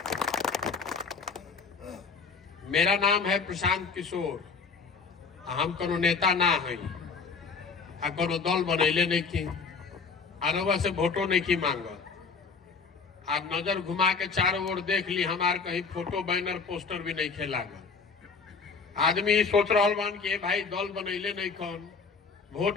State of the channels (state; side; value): quieter; right; 5.0 dB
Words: मेरा नाम है प्रशांत किशोर। हम कोनो नेता ना है, कोनो दल बनैले नहीं की, आरवा से वोटो नहीं की मांगल। आप नजर घुमा के चारों ओर देख ली, हमार कहीं फोटो बैनर पोस्टर भी नहीं लागल। आदमी ही सोच रहा बान कि भाई दल बनैले नहीं कौन,